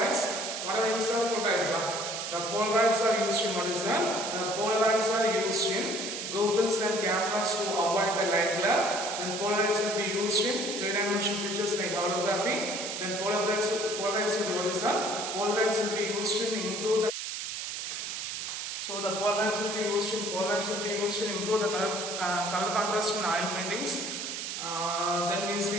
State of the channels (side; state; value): right; noise; hiss, 5 dB below the sound